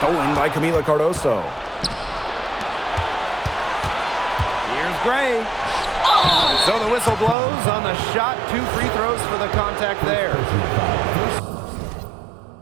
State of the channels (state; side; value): drops out; left; at 7.4 s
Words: by Camila Cardoso. Here's Gray. So the whistle blows on the shot. 2 free throws for the contact there.